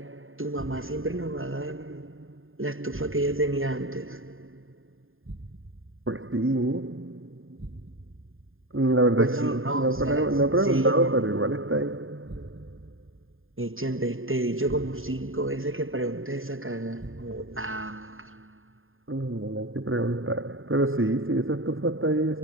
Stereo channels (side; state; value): left; late; 0.59 ms